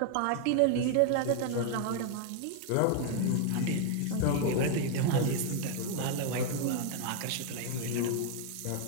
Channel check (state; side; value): different; both; correlation 0.00